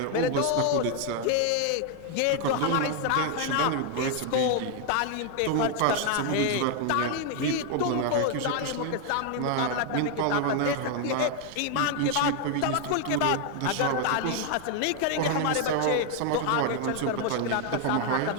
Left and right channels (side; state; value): both; different; correlation 0.00